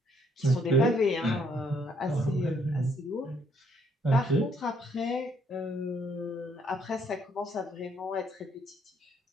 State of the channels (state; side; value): normal; both; correlation 0.68